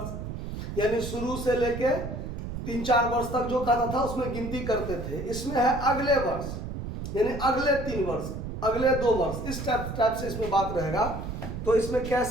यानी शुरू से लेके 3-4 वर्ष तक जो खाता था उसमें गिनती करते थे। इसमें है अगले वर्ष, यानी अगले 3 वर्ष, अगले 2 वर्ष, इस टाइप से इसमें बात रहेगा। तो इसमें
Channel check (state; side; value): noise; right; rumble, 7 dB below the sound